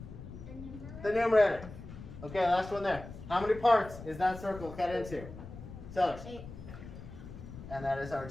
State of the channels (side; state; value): left; noise; rumble, 13 dB below the sound